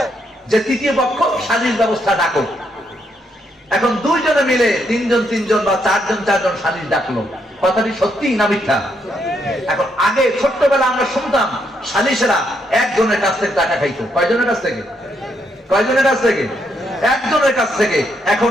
যে তৃতীয় পক্ষ সালিশ ব্যবস্থা ডাকো। এখন দুইজনে মিলে তিনজন বা চারজন সালিশ ডাকলো, কথাটি সত্যি না মিথ্যা? এখন আগে ছোট্টবেলা আমরা শুনতাম সালিশেরা একজনের কাছ থেকে টাকা খাইতো। কয়জনের কাছ থেকে? কয়জনের কাছ থেকে? একজনের কাছ থেকে।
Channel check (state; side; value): normal; both; correlation 0.76